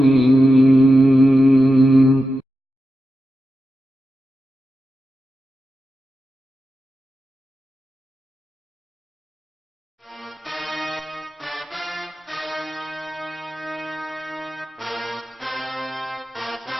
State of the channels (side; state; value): both; normal; correlation 0.90